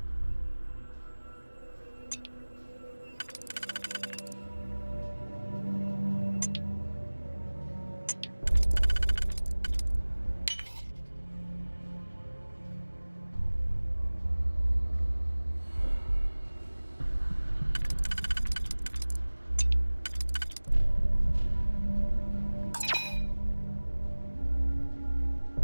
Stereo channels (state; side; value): inverted; both; correlation -1.00